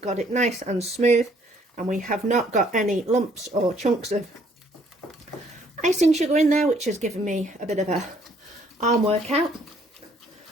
it nice and smooth, and we have not got any lumps or chunks of icing sugar in there, which has given me a bit of a arm workout.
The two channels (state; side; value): normal; both; correlation 0.63